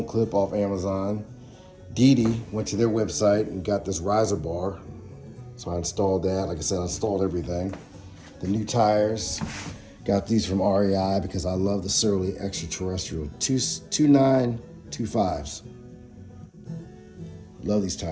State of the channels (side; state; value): both; identical; correlation 1.00